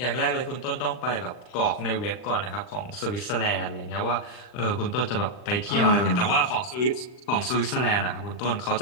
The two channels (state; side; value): late; right; 39 ms